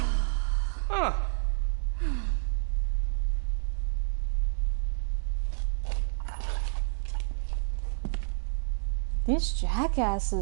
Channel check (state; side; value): silent; left; digital silence